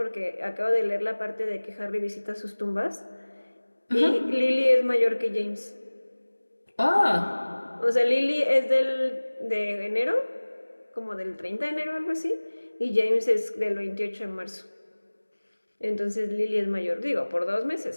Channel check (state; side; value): inverted; both; correlation -1.00